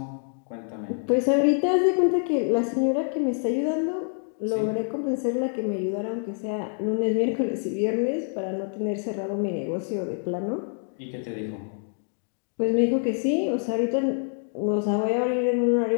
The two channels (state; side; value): silent; right; 57 dB below the other